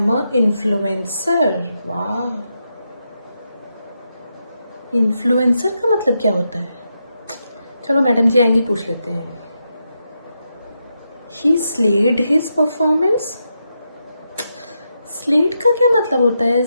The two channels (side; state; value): both; inverted; correlation -0.84